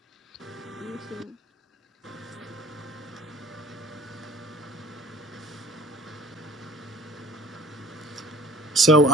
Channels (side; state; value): both; normal; correlation 0.51